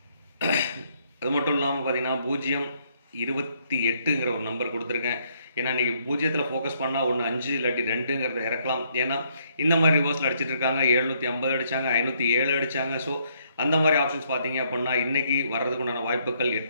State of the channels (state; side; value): inverted; both; correlation -0.70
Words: அது மட்டும் இல்லாமல் பார்த்தீங்கன்னா 028ங்கிற ஒரு நம்பர் கொடுத்துருக்கேன். ஏன்னா நீங்கள் 0த்தில் ஃபோக்கஸ் பண்ணால் 1 5 இல்லாட்டி 2ங்கிறத இறக்கலாம். ஏன்னா இந்த மாதிரி ரிவர்ஸில் அடிச்சிட்டு இருக்காங்க. 750 அடித்தாங்க, 507 அடித்தாங்க. ஸோ அந்த மாதிரி ஆப்ஷன்ஸ் பார்த்தீங்க அப்படின்னா இன்றைக்கி வர்றதுக்கு உண்டான வாய்ப்புகள்